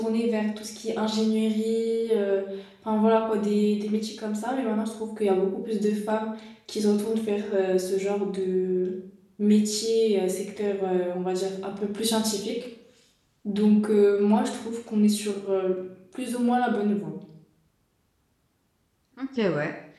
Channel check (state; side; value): identical; both; correlation 1.00